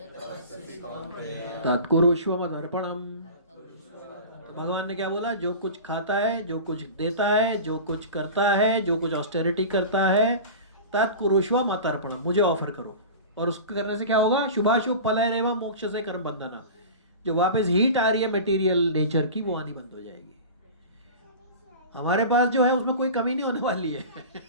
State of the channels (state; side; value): inverted; both; correlation -0.33